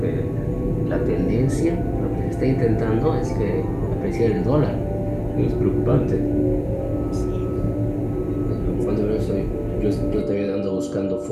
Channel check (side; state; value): both; identical; correlation 1.00